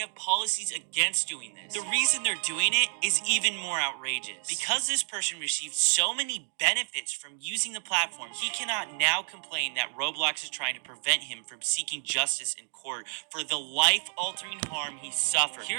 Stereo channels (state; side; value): silent; left; digital silence